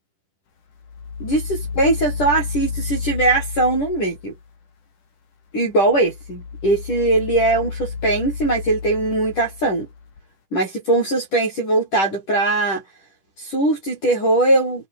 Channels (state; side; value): late; right; 10 ms